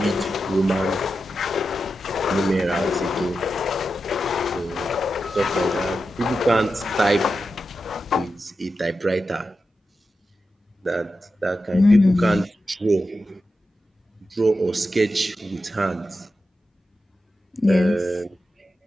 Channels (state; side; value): normal; both; correlation 0.90